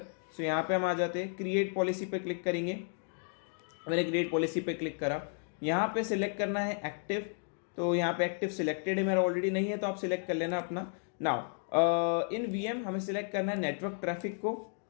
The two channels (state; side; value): silent; right; 56 dB below the other